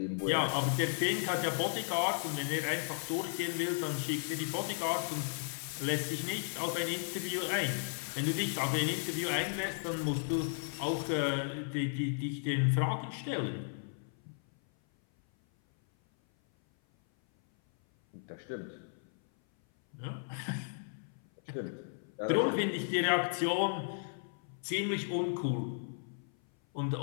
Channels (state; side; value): silent; right; 55 dB below the other